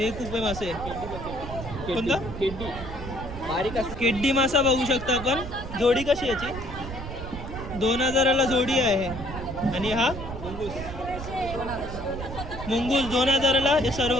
कुपे मासे. कोणता? केड्डी मासा बघू शकता आपण. जोडी कशी याची? 2000ला जोडी आहे. आणि हा मुंगूस 2000ला हे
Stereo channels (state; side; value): noise; right; rumble, 9 dB below the sound